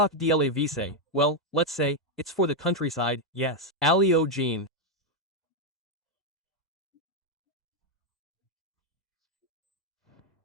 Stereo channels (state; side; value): normal; both; correlation 0.02